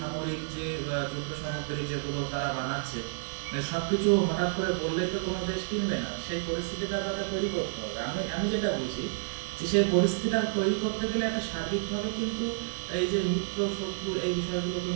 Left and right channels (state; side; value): silent; left; 58 dB below the other